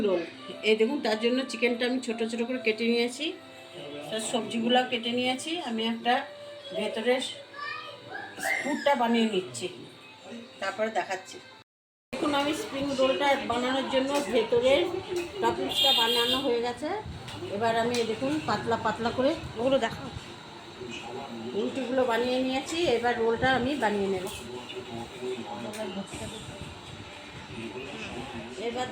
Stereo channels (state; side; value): identical; both; correlation 1.00